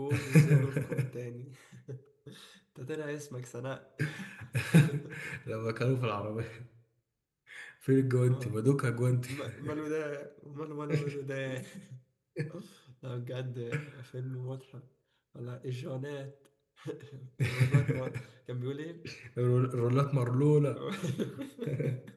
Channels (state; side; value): identical; both; correlation 1.00